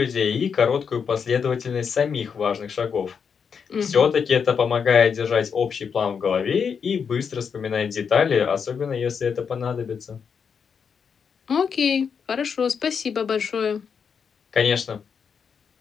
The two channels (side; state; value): right; quieter; 6.5 dB